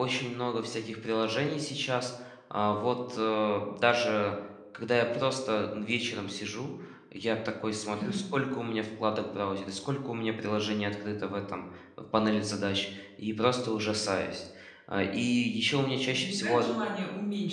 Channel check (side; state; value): both; identical; correlation 1.00